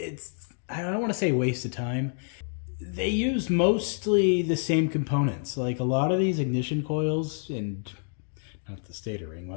I don't want to say waste of time. They use mostly the same components. Like a lot of these ignition coils and not the stator ring,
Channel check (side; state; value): right; silent; 59 dB below the other